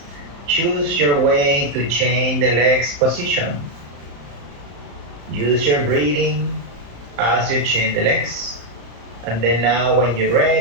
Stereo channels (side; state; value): left; late; 34 ms